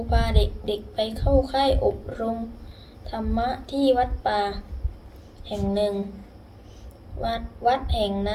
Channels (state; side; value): identical; both; correlation 1.00